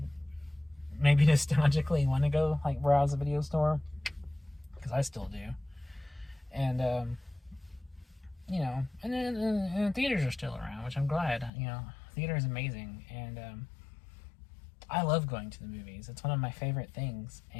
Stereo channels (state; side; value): drops out; right; at 11.5 s